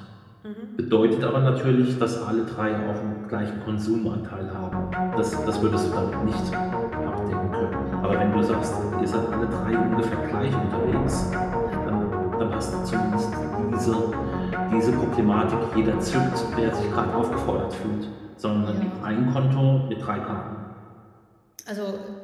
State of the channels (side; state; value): both; identical; correlation 1.00